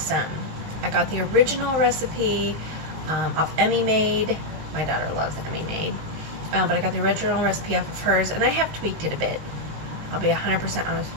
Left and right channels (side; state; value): left; late; 19 ms